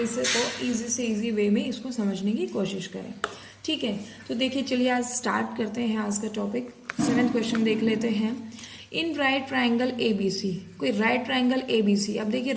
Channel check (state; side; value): identical; both; correlation 1.00